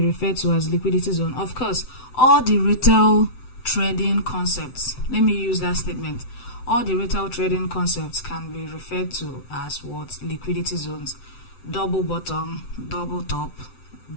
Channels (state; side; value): late; right; 7.9 ms